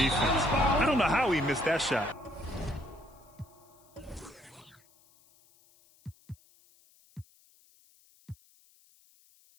I don't know how he missed that shot.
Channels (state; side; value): noise; left; hiss, 30 dB below the sound